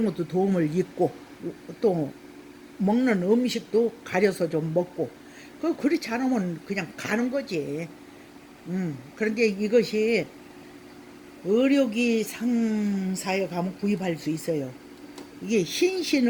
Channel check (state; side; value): identical; both; correlation 1.00